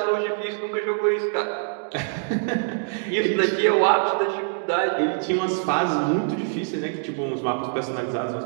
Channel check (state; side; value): silent; left; digital silence